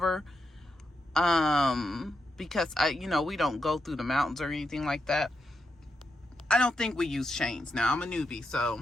because we don't go through the mountains or anything like that. I don't think we use chains. Now I'm a newbie,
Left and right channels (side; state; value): both; normal; correlation 0.85